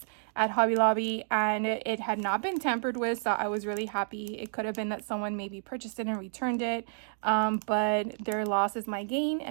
at Hobby Lobby, and it had not been tampered with, so I was really happy. It could have been that someone maybe purchased it and returned it, but their loss is my gain,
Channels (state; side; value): silent; left; digital silence